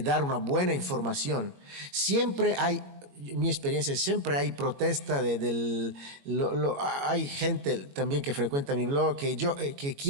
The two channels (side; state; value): left; late; 21 ms